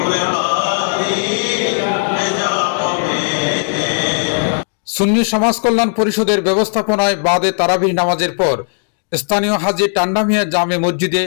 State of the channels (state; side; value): silent; right; digital silence